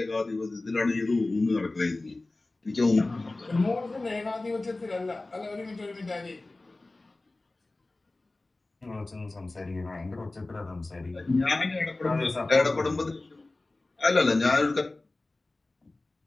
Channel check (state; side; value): quieter; right; 3.0 dB